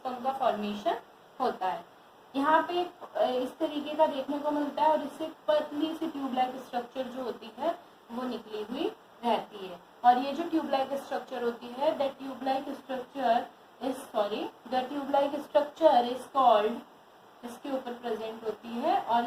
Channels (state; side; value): identical; both; correlation 1.00